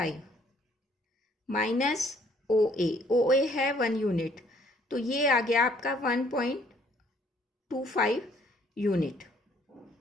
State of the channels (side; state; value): both; normal; correlation 0.63